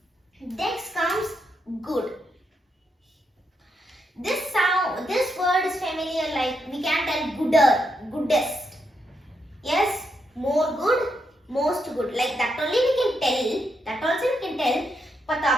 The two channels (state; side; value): normal; both; correlation 0.81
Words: Next comes good. This word is familiar, like we can tell gooder, goodest. Yes, more good, most good. Like that only we can tell. That also we can tell. But the